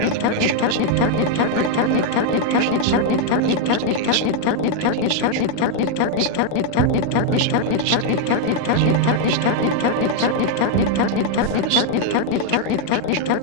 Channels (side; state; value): both; different; correlation 0.01